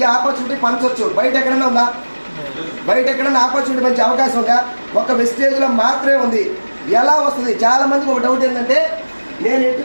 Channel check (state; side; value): inverted; both; correlation -1.00